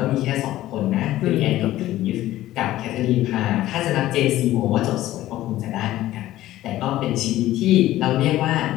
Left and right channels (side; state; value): right; quieter; 14.9 dB